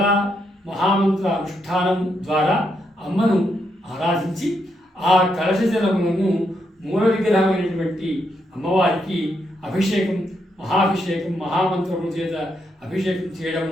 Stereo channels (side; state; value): both; normal; correlation 0.79